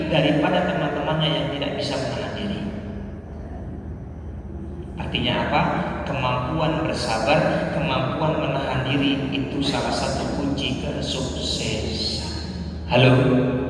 daripada teman-temannya yang tidak bisa menahan diri. Artinya apa? Kemampuan bersabar, kemampuan menahan diri itu salah satu kunci kesuksesan. Halo?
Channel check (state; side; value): identical; both; correlation 1.00